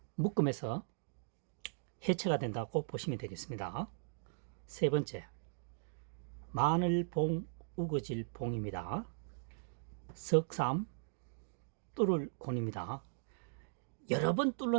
묶음에서 해체가 된다고 보시면 되겠습니다. 세 번째 마늘봉 우거질 봉입니다. 석삼 뚫을 권입니다. 여러 번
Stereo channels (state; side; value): silent; left; digital silence